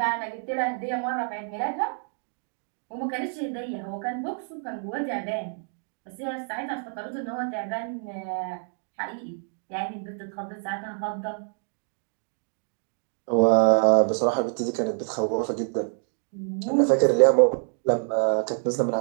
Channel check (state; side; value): silent; left; 60 dB below the other